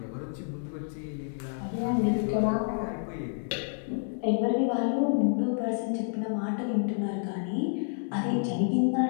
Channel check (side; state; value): right; silent; 58 dB below the other